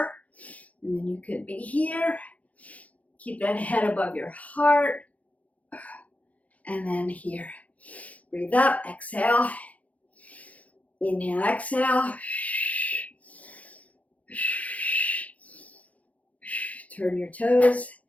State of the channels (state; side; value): late; right; 0.069 ms